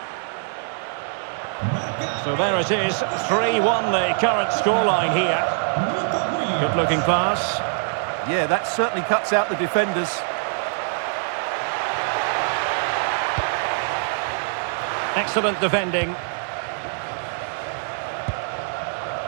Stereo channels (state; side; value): silent; left; 60 dB below the other